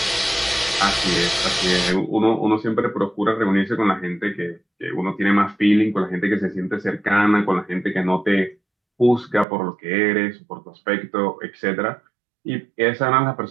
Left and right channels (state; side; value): drops out; left; at 9.5 s